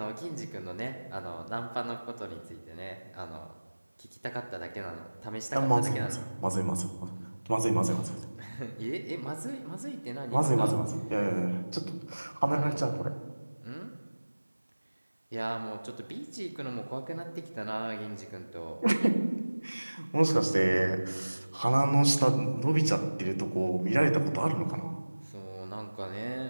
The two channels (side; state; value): both; inverted; correlation -1.00